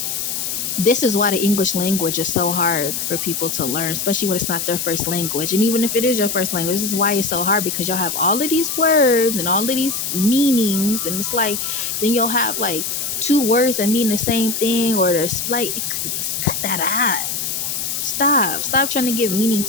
this is why the English language is so hard for people to learn, especially when it's not their first language. And even if it is your first language, this is why it's so hard, because y'all have all of these words and all of these meanings. And it's like, then you'll have like two words that mean the same thing, or there's like, cut that out. Stop trying to give meaning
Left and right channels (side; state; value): left; noise; hiss, 2 dB below the sound